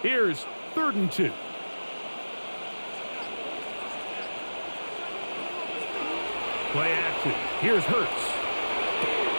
Here's 3rd and 2. Play action. Here's Hurts.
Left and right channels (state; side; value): inverted; both; correlation -1.00